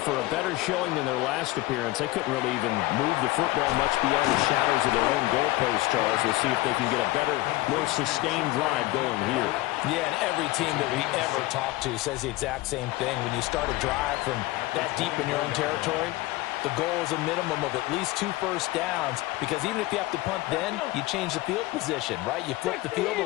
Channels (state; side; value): quieter; right; 18.9 dB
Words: a better showing than their last appearance. They couldn't really even move the football much beyond the shadows of their own goalpost, Charles. We'll see if they can get a better, more sustained drive going here. Yeah, and every team that we ever talk to says the exact same thing. When you start a drive from that deep in your own territory, the goal is a minimum of at least 2 first downs, because even if you have to punt then, you change the field position, right? You flip the field